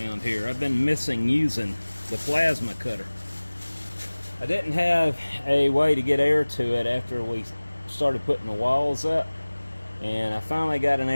here. I've been missing using the plasma cutter. I didn't have a way to get air to it after we started putting the walls up, and I finally got an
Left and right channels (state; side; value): inverted; both; correlation -1.00